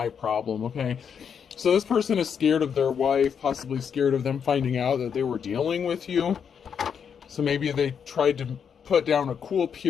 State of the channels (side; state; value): right; quieter; 7.2 dB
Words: problem, okay? So this person is scared of their wife, possibly scared of them finding out that they were dealing with you. So maybe they tried to put down a cool